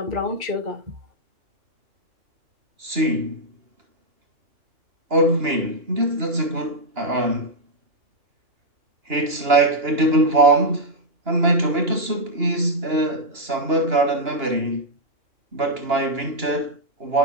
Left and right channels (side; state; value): left; late; 2.9 ms